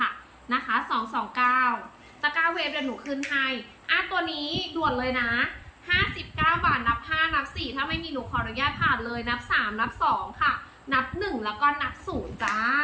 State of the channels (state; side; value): identical; both; correlation 1.00